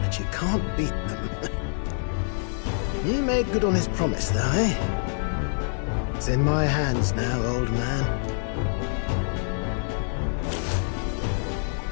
but you can't beat them. He made good on his promise, though, eh? It's in my hands now, old man.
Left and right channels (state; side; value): silent; right; digital silence